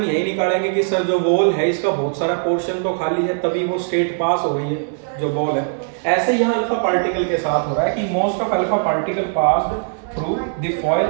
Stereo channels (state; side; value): silent; left; 66 dB below the other